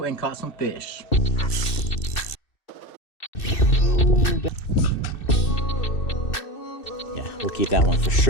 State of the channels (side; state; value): right; late; 2.6 ms